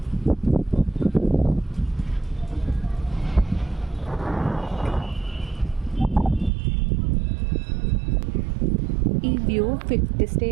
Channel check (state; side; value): drops out; left; at 6.5 s